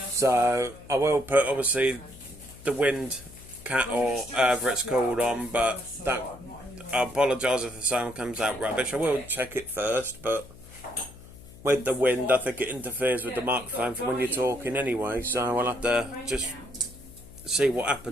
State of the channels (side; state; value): left; noise; hum, 19 dB below the sound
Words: So, I will put, obviously, the wind cat or whatever it's called on, but I apologise if the sound comes out rubbish. I will check it first, but with the wind, I think it interferes with the microphone for when you're talking anyway, so I'll have to just see what